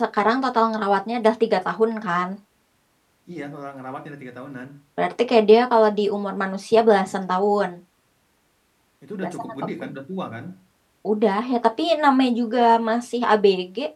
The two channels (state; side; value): identical; both; correlation 1.00